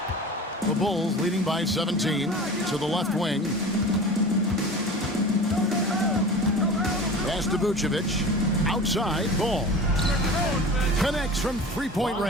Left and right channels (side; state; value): both; normal; correlation 0.35